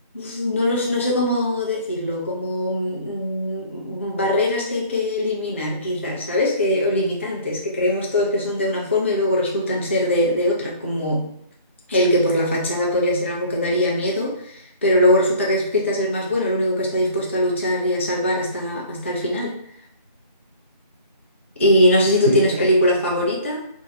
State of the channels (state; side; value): inverted; both; correlation -0.49